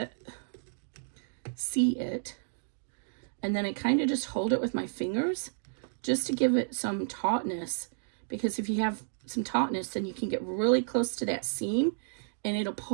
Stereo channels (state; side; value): silent; left; digital silence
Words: and then I kind of just hold it with my fingers just to give it some tautness, because if you have some tautness, then you can get really close to that seam and it'll